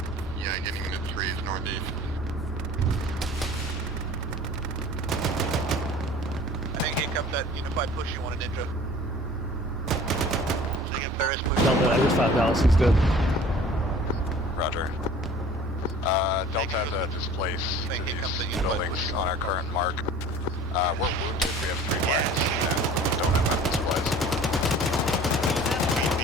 Yeah, getting into 3s northeast. I think here comes that unified push you wanted, Ninja. Ferris push. Delta, I just found Dallas, he's dead. Roger. Delta has a displace to these buildings on our current mark. We're wounded, we have 3 flags, and don't have weapon supplies.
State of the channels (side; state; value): both; normal; correlation 0.46